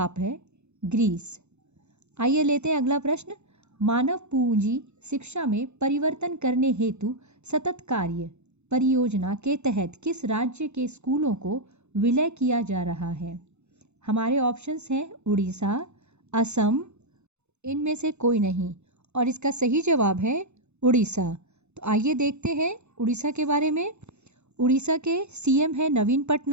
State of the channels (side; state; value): left; late; 0.82 ms